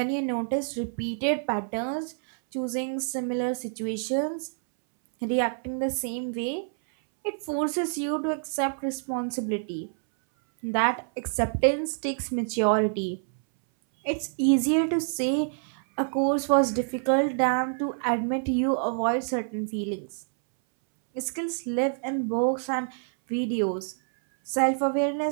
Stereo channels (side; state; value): left; silent; 60 dB below the other